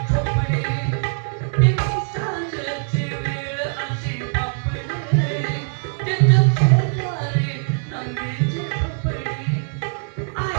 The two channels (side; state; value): left; silent; 60 dB below the other